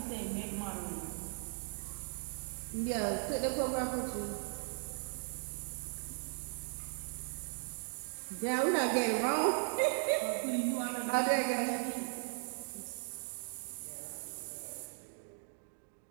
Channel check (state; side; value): silent; left; digital silence